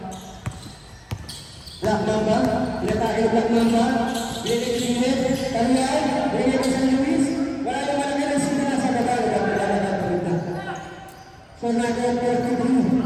Black mamba, kita tak ada black mamba. Ini kiriman, kalian, ini pesan Luis. Walau mana kita sudah nasa kata kita. So naga perlu,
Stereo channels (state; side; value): identical; both; correlation 1.00